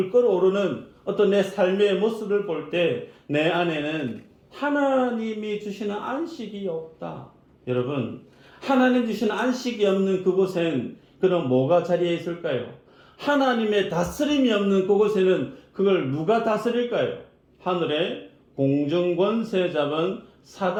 끓어오르는 어떤 내 삶의 모습을 볼 때 내 안에는 하나님이 주시는 안식이 없다. 여러분, 하나님 주시는 안식이 없는 그곳엔 그럼 뭐가 자리에 있을까요? 하나님의 다스림이 없는 그곳에는 그걸 누가 다스릴까요? 하늘의 공중권세 잡은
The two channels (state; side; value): identical; both; correlation 1.00